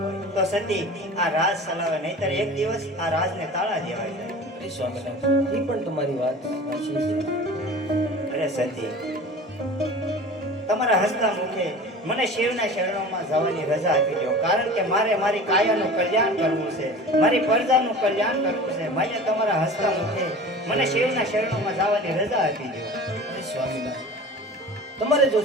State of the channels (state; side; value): normal; both; correlation 0.38